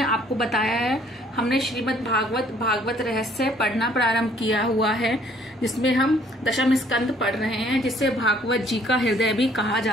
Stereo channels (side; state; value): both; normal; correlation 0.61